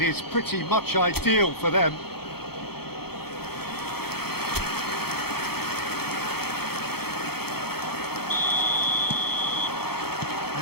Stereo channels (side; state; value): right; late; 0.96 ms